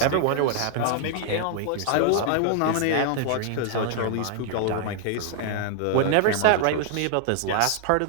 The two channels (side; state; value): both; different; correlation 0.00